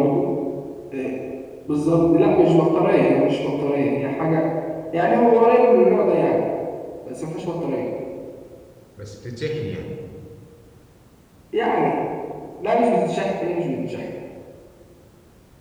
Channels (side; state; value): both; identical; correlation 1.00